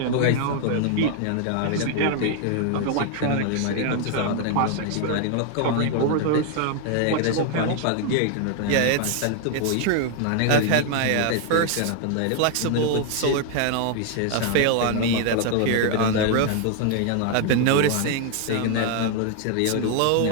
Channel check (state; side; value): different; both; correlation 0.00